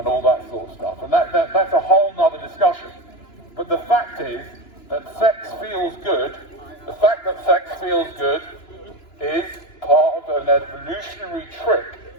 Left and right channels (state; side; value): late; right; 2.9 ms